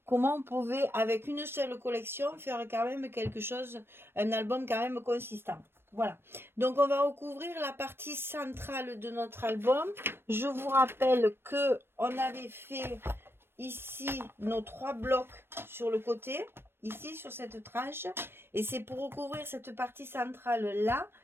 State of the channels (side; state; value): left; late; 0.11 ms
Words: comment on pouvait, avec une seule collection, faire quand même quelque chose, un album quand même consistant. Voilà, donc on va recouvrir la partie centrale de notre album. Je vous rappelle que on avait fait ici nos 3 blocs sur le côté, ici sur cette tranche, et c'est pour recouvrir cette partie centrale là